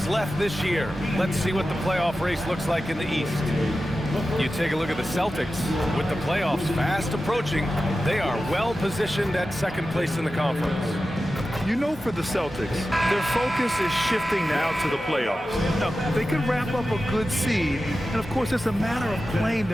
left this year. Let's see what the playoff race looks like in the East. You take a look at the Celtics. With the playoffs fast approaching, they are well positioned at second place in the conference. You know, for the Celtics, their focus is shifting now to the playoffs. Now, they could wrap up a good seed, and of course, it's a matter of playing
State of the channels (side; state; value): both; normal; correlation 0.93